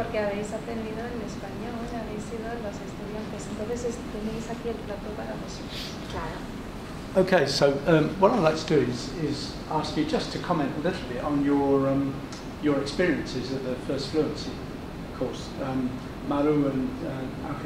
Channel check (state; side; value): identical; both; correlation 1.00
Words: habéis aprendido en español, habéis sido los estudiantes, entonces tenéis aquí el plato para vosotros. Claro. Okay, so what I'd like to do is ask you just to comment a little bit on your experiences of the First Fluency course. Maru and